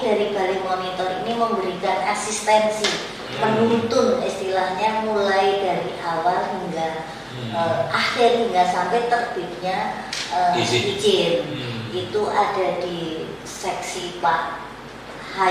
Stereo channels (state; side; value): identical; both; correlation 1.00